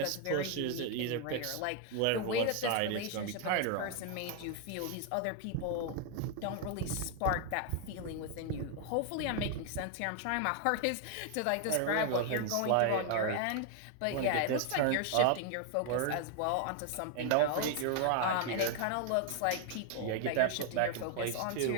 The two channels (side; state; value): both; different; correlation 0.00